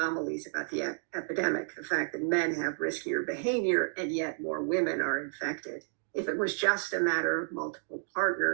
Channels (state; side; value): silent; left; digital silence